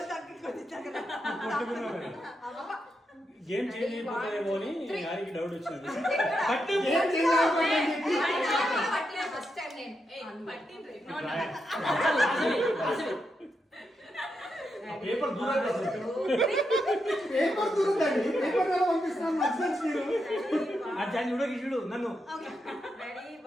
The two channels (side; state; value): both; normal; correlation 0.84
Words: గేమ్ చేంజ్ అయిపోతుందేమో అని గారికి డౌట్ వచ్చింది. పేపర్ దూరం అర్జాన్ చూడ చూడు నన్ను